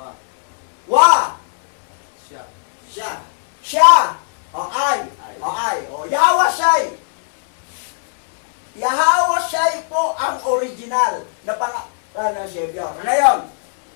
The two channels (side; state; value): right; silent; 62 dB below the other